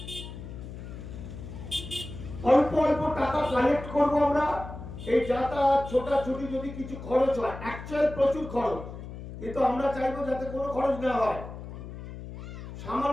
অল্প অল্প টাকা কালেক্ট করবো আমরা। এই যাতায়াত ছোটাছুটি যদি কিছু খরচ হয়, অ্যাকচুয়াল প্রচুর খরচ, কিন্তু আমরা চাইবো যাতে কোনো খরচ না হয়।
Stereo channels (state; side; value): noise; left; hum, 11 dB below the sound